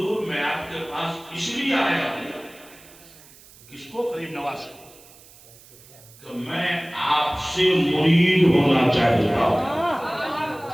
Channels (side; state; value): right; noise; hiss, 23 dB below the sound